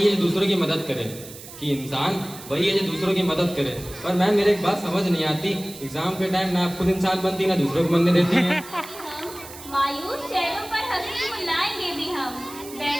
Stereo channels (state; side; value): noise; right; hiss, 15 dB below the sound